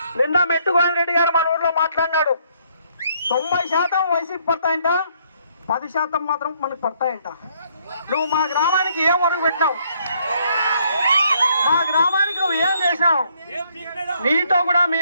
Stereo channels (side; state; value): both; inverted; correlation -0.68